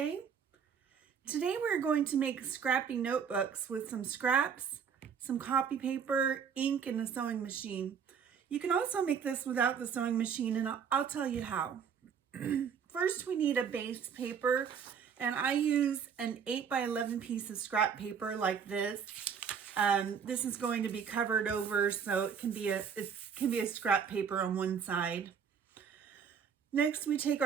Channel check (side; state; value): left; quieter; 7.1 dB